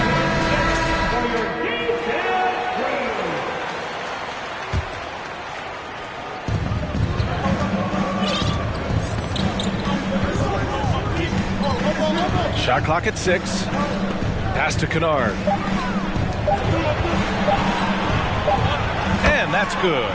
Shot clock at 6. Pass to Kennard. And that's good.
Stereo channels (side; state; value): both; identical; correlation 1.00